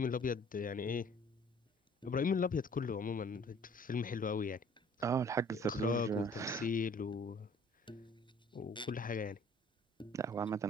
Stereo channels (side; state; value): both; normal; correlation 0.54